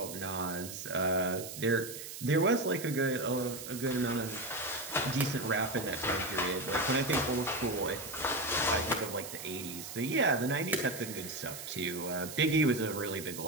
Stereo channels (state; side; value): noise; right; hiss, 10 dB below the sound